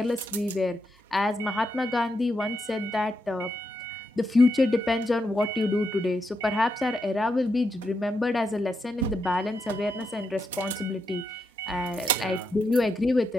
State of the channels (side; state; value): both; normal; correlation 0.83